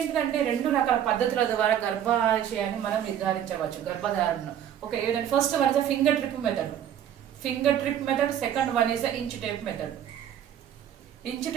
2 రకాల పద్ధతుల ద్వారా గర్భాశయాన్ని మనం నిర్ధారించవచ్చు, గర్భధారణను. ఓకే, ఏదంటే first one is finger trip method, second one is inch tape method. Inch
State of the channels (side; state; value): left; quieter; 10.1 dB